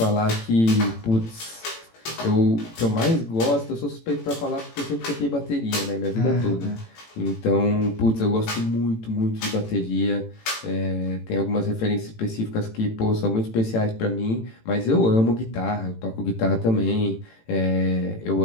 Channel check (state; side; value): late; right; 18 ms